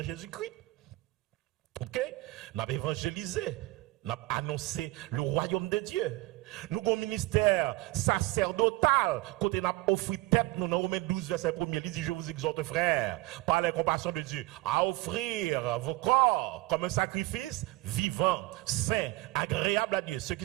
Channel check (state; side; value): quieter; left; 20.0 dB